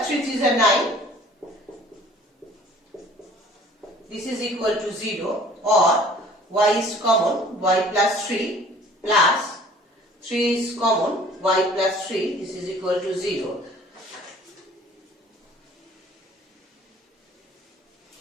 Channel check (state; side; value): normal; both; correlation 0.51